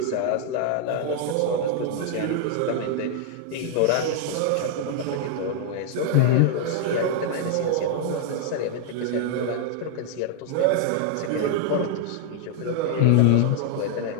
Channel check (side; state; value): both; different; correlation 0.00